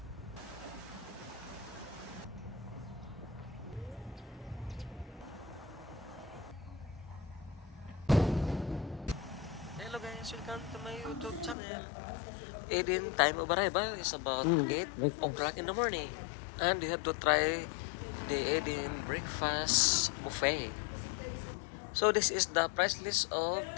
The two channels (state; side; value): drops out; right; at 11.6 s